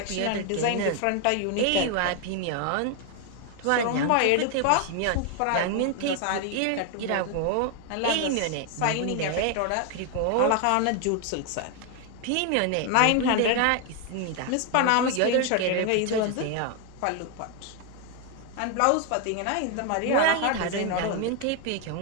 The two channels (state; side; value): different; both; correlation 0.01